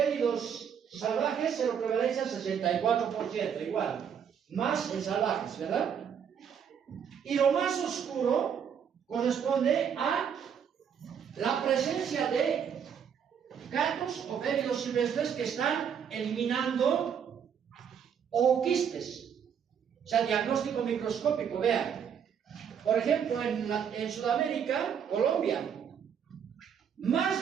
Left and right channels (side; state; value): left; quieter; 7.8 dB